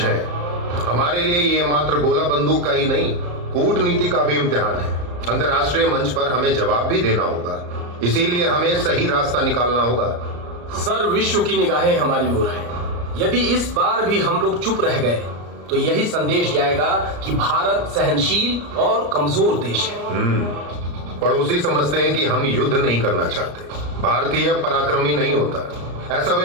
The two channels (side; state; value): left; late; 34 ms